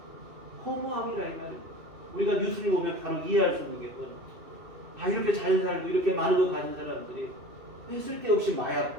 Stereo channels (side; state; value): left; late; 2.6 ms